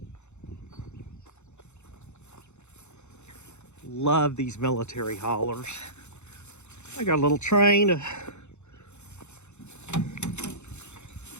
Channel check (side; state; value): right; late; 0.82 ms